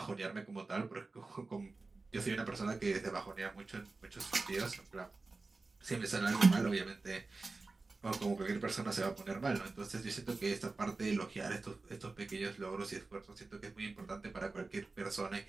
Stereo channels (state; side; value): quieter; left; 3.7 dB